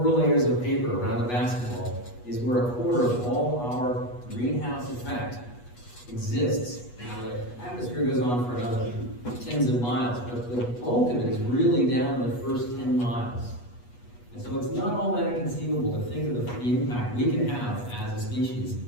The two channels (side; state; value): right; late; 8.3 ms